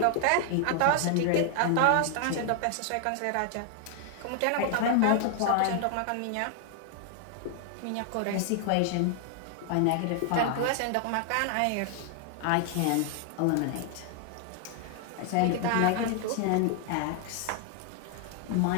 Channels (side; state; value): both; different; correlation 0.00